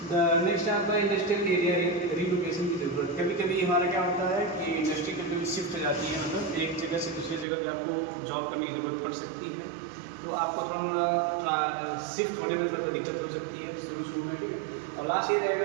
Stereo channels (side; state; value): left; drops out; at 7.5 s